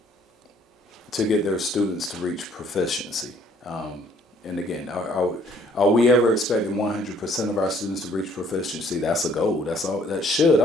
their students to reach proficiency. And again, are we ever expecting 100% of our students to reach proficiency? That's a goal. That should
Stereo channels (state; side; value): normal; both; correlation 0.61